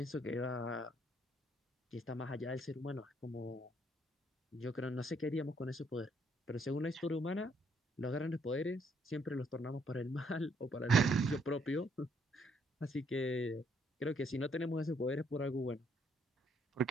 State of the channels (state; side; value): normal; both; correlation 0.69